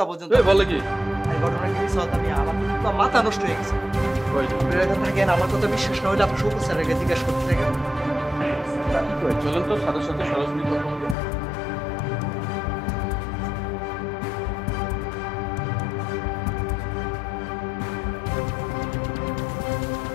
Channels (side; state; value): right; drops out; at 11.2 s